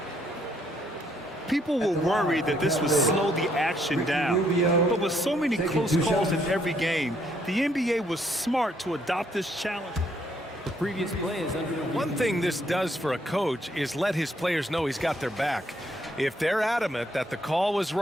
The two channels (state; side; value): normal; both; correlation 0.70